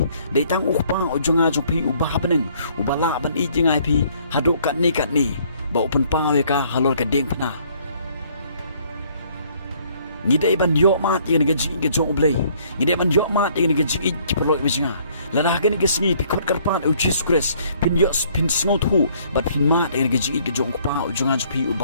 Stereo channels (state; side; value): inverted; both; correlation -0.62